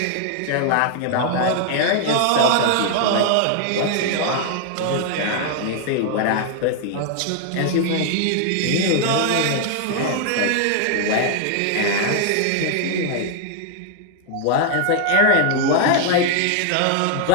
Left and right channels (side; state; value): both; different; correlation 0.00